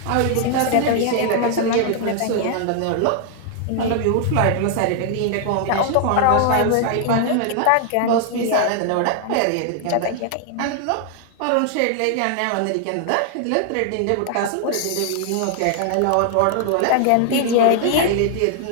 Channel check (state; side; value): different; both; correlation 0.00